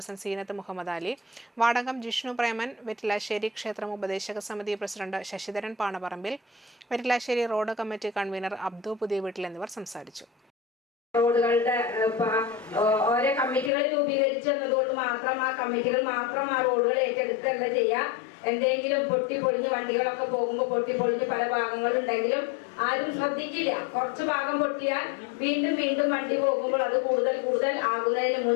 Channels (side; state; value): right; drops out; at 13.7 s